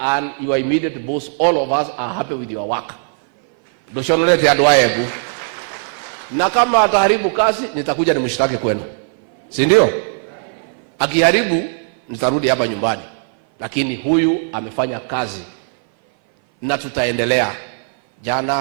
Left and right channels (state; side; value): silent; left; 58 dB below the other